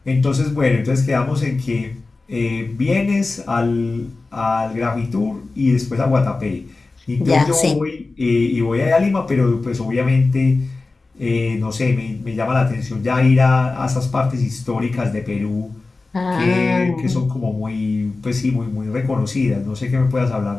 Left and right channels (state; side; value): quieter; right; 3.6 dB